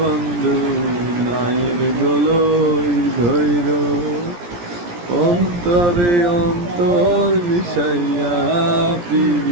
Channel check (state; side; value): late; left; 17 ms